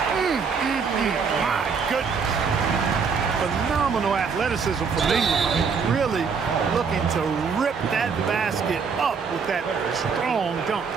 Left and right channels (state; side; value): quieter; left; 5.7 dB